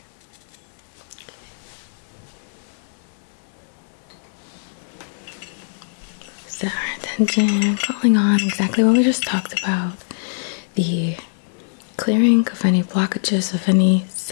Set our attention, calling on exactly what we just talked about. The clearing of any blockages, of any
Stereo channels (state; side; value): silent; right; 64 dB below the other